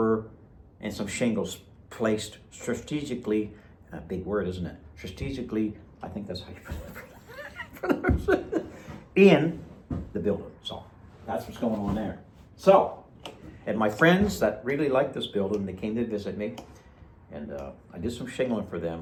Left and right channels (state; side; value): identical; both; correlation 1.00